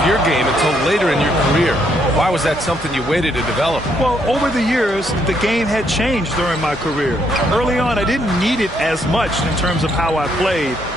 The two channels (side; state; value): both; normal; correlation 0.72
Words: your game until later in your career. Why was that something you waited to develop? Well, over the years, the game had changed during my career. Early on, I didn't need it as much in terms of how I played.